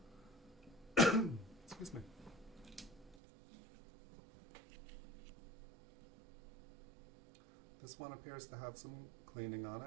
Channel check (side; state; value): left; drops out; at 3.2 s